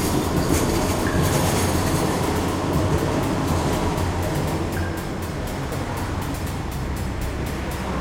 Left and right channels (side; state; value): both; identical; correlation 1.00